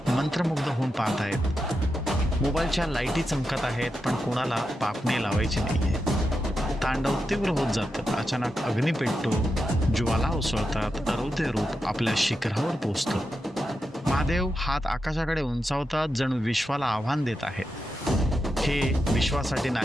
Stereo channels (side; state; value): both; normal; correlation 0.88